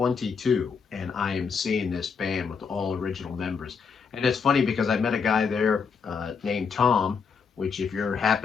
and I am seeing this band with all original members. And it's funny because I met a guy there named Tom, which if you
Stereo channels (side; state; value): right; quieter; 5.8 dB